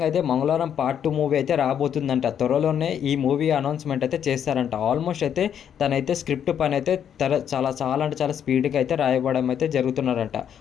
అయితే మంగళవారం పార్ట్ 2 మూవీ అయితే రాబోతుందంట. త్వరలోనే ఈ మూవీ అనౌన్స్మెంట్ అయితే చేస్తారంట. ఆల్మోస్ట్ అయితే తనైతే స్క్రిప్ట్ పని అయితే చాలా స్పీడ్గా అయితే రాయబడడం అయితే జరుగుతున్నారంట.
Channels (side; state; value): right; quieter; 8.8 dB